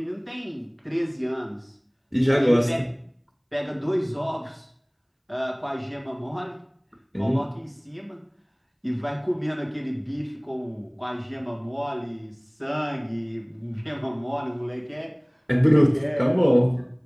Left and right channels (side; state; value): both; identical; correlation 1.00